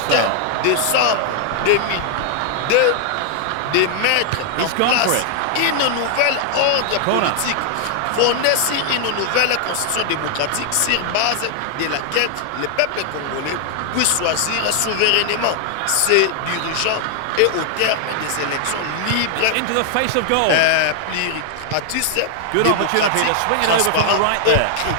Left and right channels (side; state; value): both; different; correlation 0.00